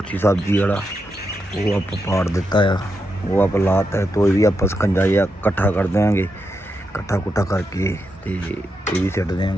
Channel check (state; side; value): normal; both; correlation 0.85